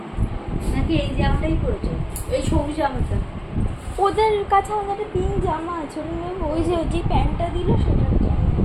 নাকি এই জামাটাই পরেছো? এই সবুজ জামাটা ওদের কাছে আমাদের পিঙ্ক জামা আছে, ওটা নেবো। ওই যে প্যান্টটা দিল সেটা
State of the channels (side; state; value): both; identical; correlation 1.00